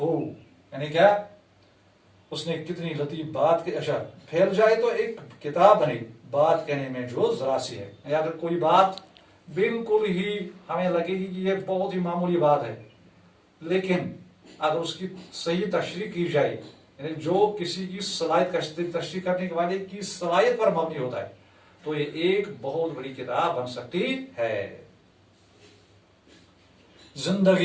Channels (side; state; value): both; identical; correlation 1.00